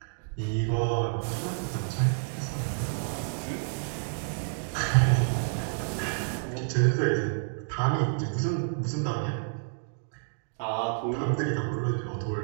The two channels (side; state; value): left; silent; digital silence